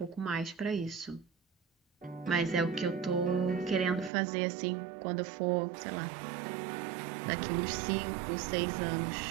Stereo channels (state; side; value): drops out; left; at 4.1 s